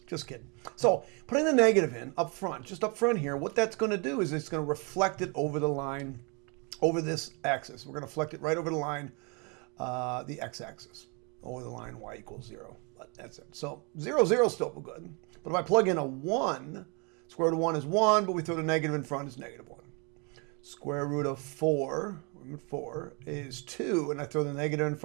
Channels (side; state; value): left; quieter; 33.0 dB